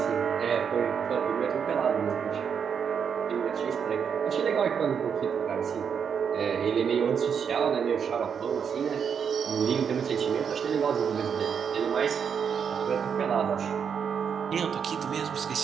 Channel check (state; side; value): quieter; left; 7.1 dB